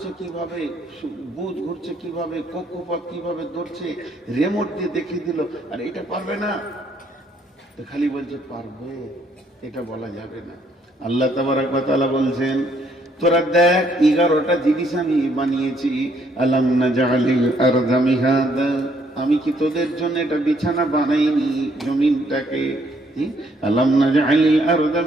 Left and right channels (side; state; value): both; normal; correlation 0.68